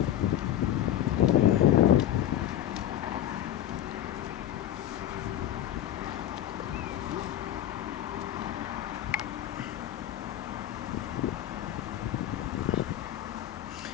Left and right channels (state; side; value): quieter; right; 11.8 dB